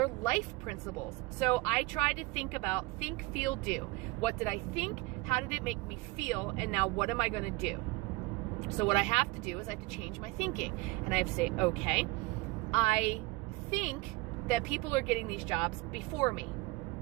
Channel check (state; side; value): quieter; left; 22.6 dB